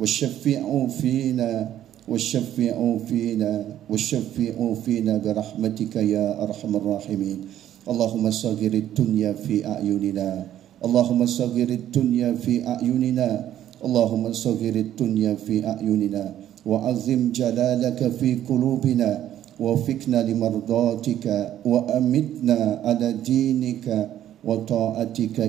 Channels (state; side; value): quieter; left; 11.6 dB